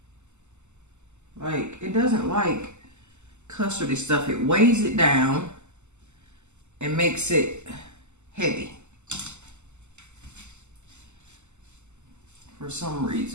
Like, it doesn't like custardy stuff. It weighs it down and makes it heavy for some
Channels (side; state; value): left; late; 0.83 ms